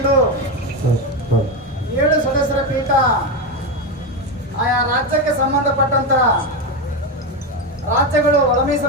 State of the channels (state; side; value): normal; both; correlation 0.12